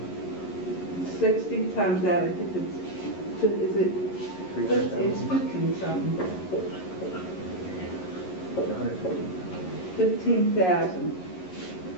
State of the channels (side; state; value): right; late; 11 ms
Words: 60 times that, I think it's, is it? 300,000. It's 15 something. 150. 15,000